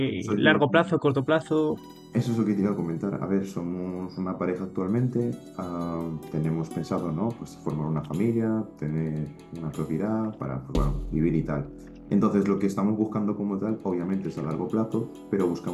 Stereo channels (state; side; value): identical; both; correlation 1.00